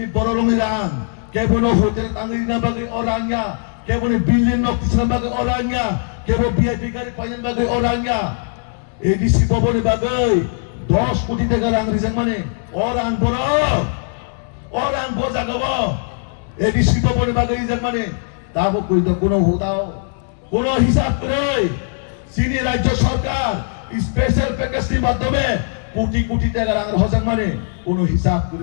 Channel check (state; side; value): silent; right; digital silence